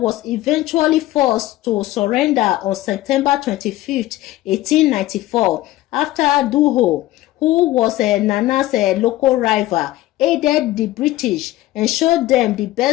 eventually forced to surrender on September 25, 1894, after Duho, who was Nana's local rival, aided the British and showed them the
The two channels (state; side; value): quieter; right; 16.2 dB